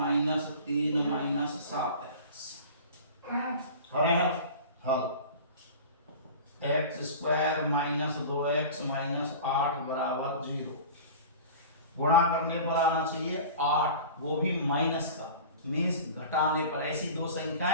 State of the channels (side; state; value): both; inverted; correlation -0.37